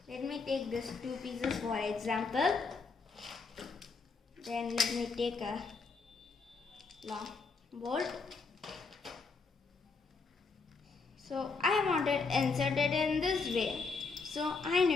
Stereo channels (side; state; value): right; quieter; 4.4 dB